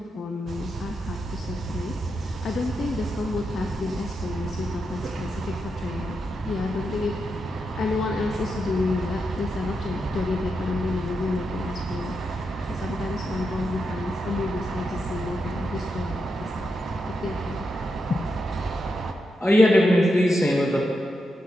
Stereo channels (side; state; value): both; normal; correlation 0.85